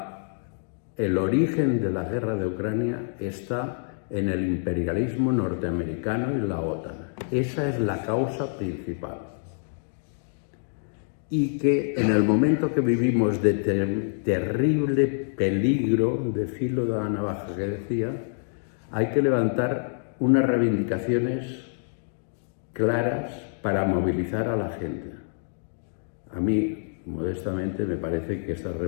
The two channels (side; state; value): right; silent; digital silence